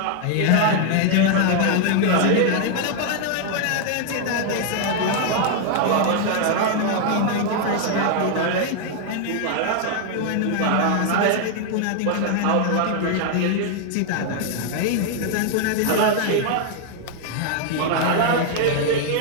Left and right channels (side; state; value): both; different; correlation 0.00